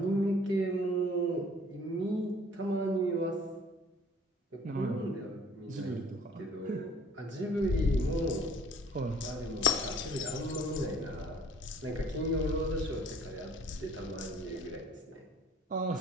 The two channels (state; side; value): normal; both; correlation 0.55